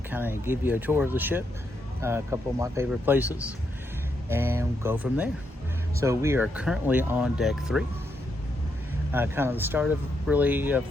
to kind of give you a tour of the ship, a couple of my favorite places, and go from there. So we are currently on deck 3, kind of the start of the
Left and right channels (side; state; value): both; normal; correlation 0.80